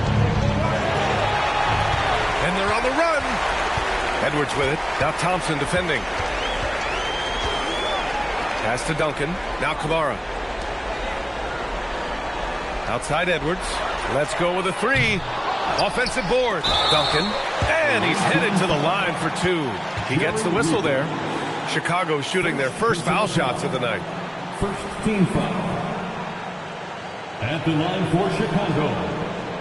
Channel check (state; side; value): identical; both; correlation 1.00